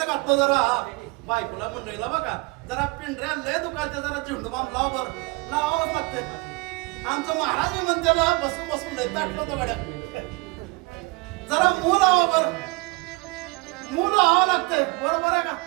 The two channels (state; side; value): quieter; left; 27.2 dB